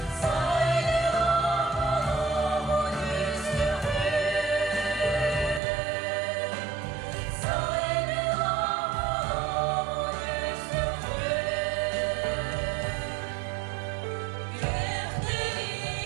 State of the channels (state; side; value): drops out; left; at 5.6 s